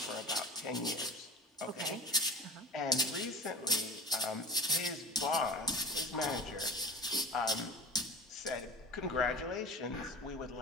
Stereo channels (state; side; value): normal; both; correlation 0.36